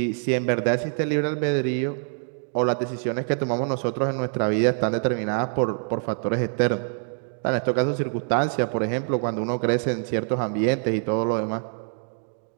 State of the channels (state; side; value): silent; left; 62 dB below the other